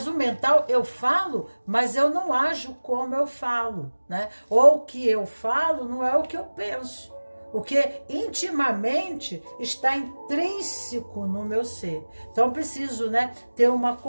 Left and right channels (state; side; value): inverted; both; correlation -1.00